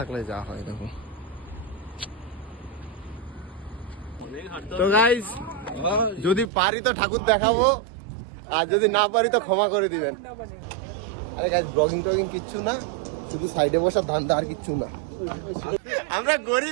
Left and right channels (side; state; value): left; drops out; at 6.5 s